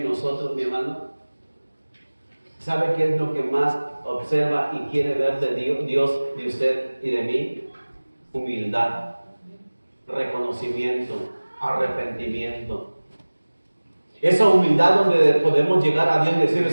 nosotros, mi hermano? ¿Sabe qué es lo que más observa y quiere ver de Dios, de usted y de mí? Humildad, reconocimiento, arrepentimiento. Esa humildad donde podemos llegar a Dios y decirle,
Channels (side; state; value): both; inverted; correlation -1.00